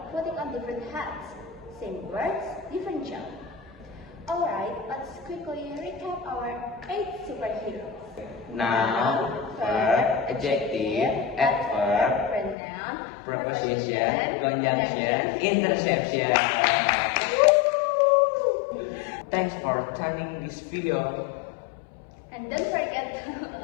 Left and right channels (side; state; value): right; drops out; at 12.6 s